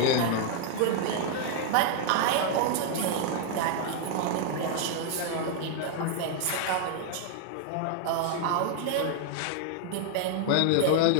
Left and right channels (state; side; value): different; both; correlation 0.00